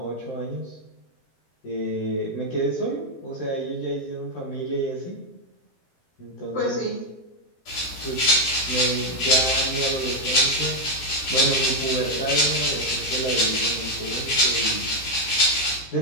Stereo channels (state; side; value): late; right; 15 ms